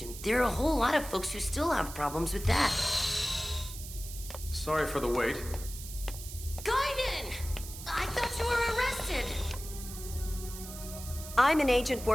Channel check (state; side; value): noise; right; hiss, 12 dB below the sound